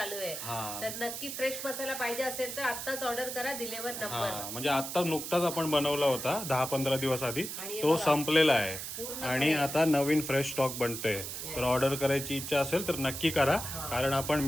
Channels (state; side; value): noise; right; hiss, 6 dB below the sound